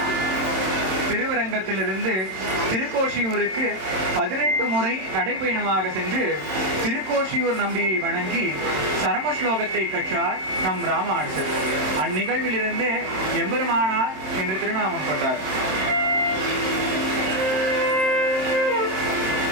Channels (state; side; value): late; left; 27 ms